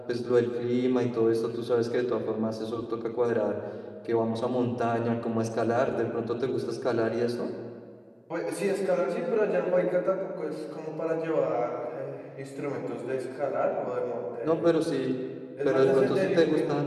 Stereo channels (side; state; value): both; identical; correlation 1.00